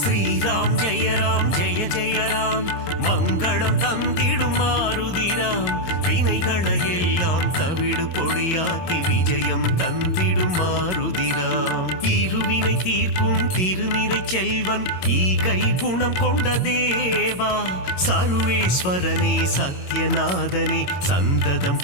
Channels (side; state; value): right; late; 22 ms